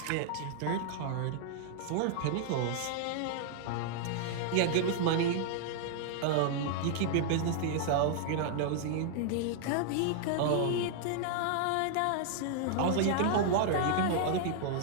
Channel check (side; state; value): both; different; correlation -0.01